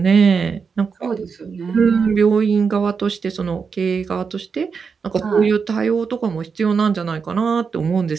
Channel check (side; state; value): left; quieter; 5.6 dB